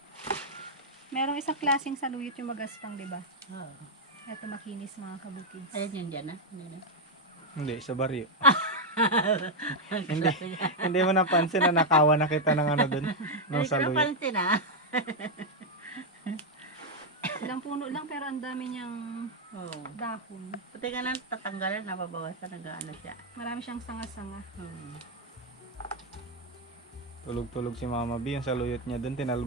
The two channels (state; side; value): normal; both; correlation 0.00